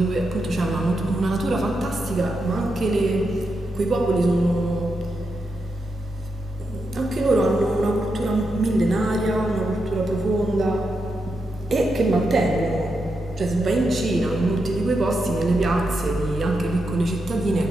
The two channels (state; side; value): normal; both; correlation 0.85